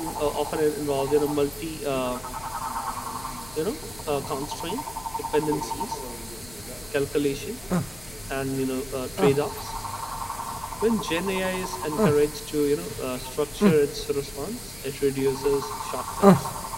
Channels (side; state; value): left; noise; rumble, 21 dB below the sound